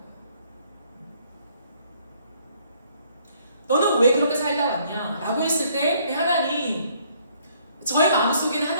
너는 왜 그렇게 살다 왔냐? 라고 했을 때 하나님, 저의 마음속에는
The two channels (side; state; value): both; inverted; correlation -0.64